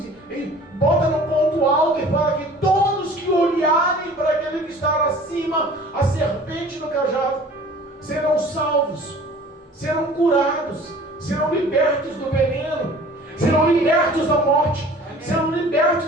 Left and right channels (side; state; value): both; normal; correlation 0.47